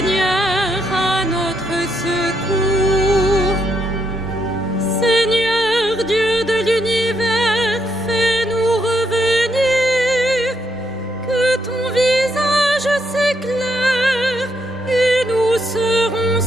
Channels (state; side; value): normal; both; correlation 0.77